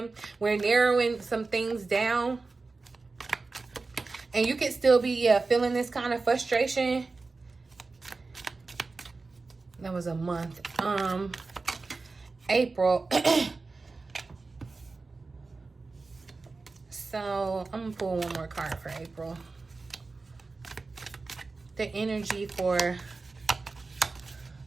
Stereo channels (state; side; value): quieter; left; 3.8 dB